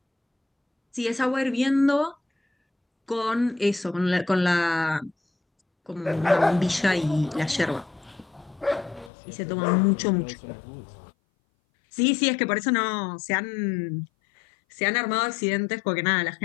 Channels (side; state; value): right; drops out; at 9.1 s